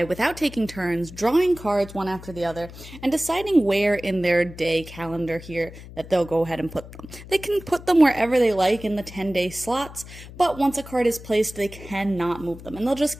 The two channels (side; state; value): left; noise; hum, 16 dB below the sound